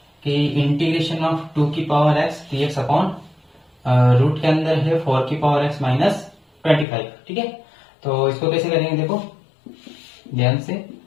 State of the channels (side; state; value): right; drops out; at 6.9 s